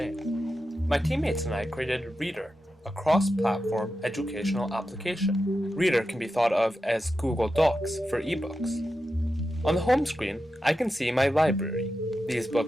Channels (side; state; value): both; normal; correlation 0.90